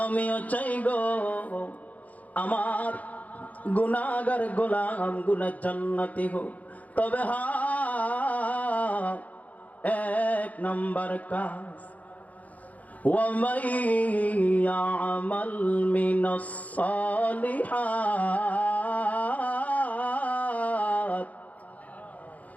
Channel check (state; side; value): late; right; 0.074 ms